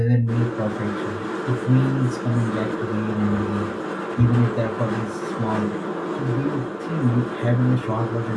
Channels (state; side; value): identical; both; correlation 1.00